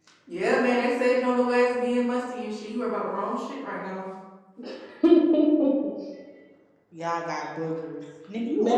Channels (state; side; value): identical; both; correlation 1.00